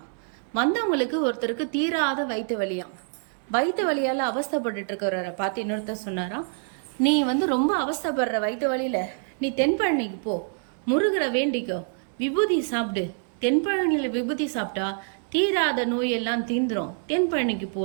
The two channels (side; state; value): left; silent; 61 dB below the other